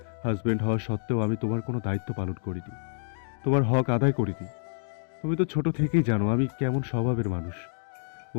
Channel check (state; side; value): silent; right; digital silence